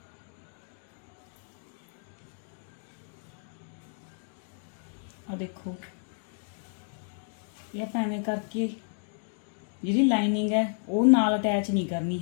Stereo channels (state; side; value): silent; right; digital silence